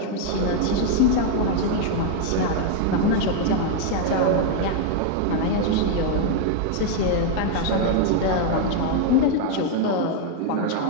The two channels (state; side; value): different; both; correlation 0.00